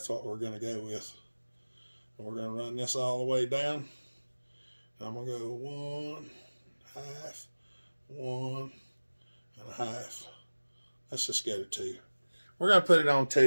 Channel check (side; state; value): both; inverted; correlation -1.00